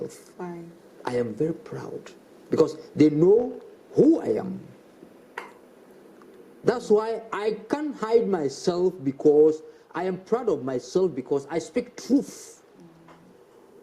Why? I am very proud because they know who I am. That's why I can't hide myself, because I am proud of myself, because I speak truth.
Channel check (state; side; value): identical; both; correlation 1.00